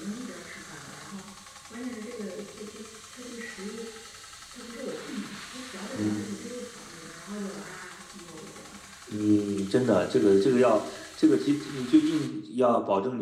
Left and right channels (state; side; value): identical; both; correlation 1.00